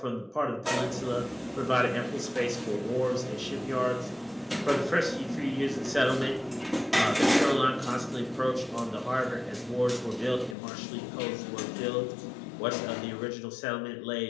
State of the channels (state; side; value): drops out; right; at 10.6 s